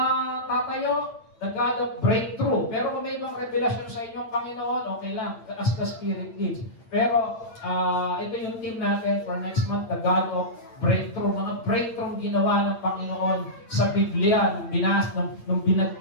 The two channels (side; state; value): right; late; 8.8 ms